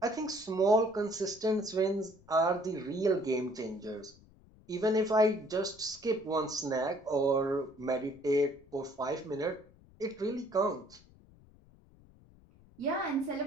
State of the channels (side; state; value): left; noise; rumble, 26 dB below the sound